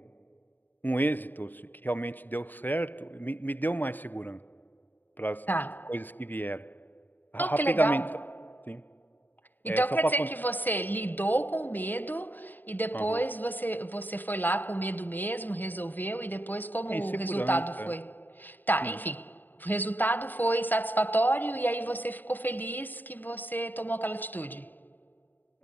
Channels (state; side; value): late; right; 0.089 ms